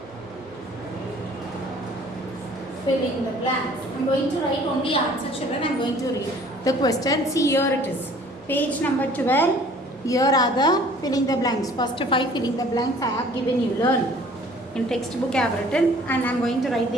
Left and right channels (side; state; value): both; normal; correlation 0.53